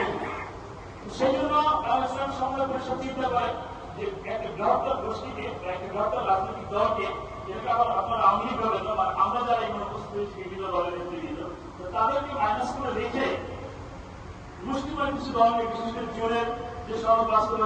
সেই জন্য ইসলাম সমন্বয় পরিষদ চিন্তা করে যে একটা বৃহত্তর গোষ্ঠীকে বা একটা বৃহত্তর রাজনৈতিক দলকে, যেটাকে আবার আপনারা আওয়ামী লীগ বলেন বা আমরা যারা এখানে উপস্থিত হয়েছি বিভিন্ন দলের নেতৃবৃন্দ, তো তাদেরকে মাইনাস করে রেখে মুসলিমের কিছু দলকে, বিশেষ করে জোরের যে সড়ক বাস্তব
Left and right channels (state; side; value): identical; both; correlation 1.00